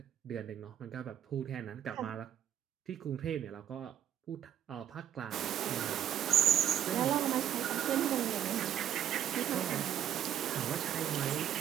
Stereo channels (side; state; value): left; quieter; 10.4 dB